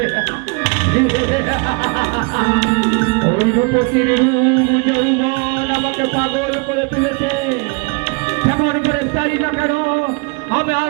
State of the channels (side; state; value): left; quieter; 32.6 dB